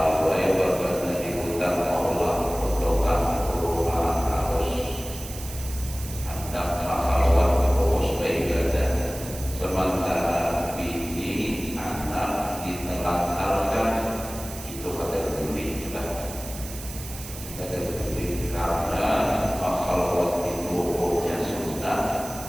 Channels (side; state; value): right; noise; hiss, 12 dB below the sound